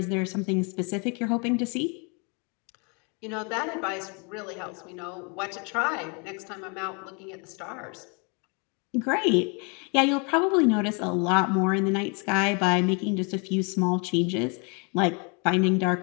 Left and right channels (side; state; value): right; quieter; 34.2 dB